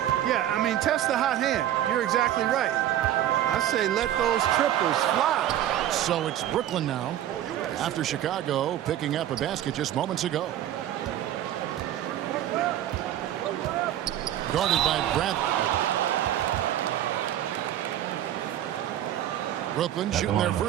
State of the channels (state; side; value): quieter; left; 11.9 dB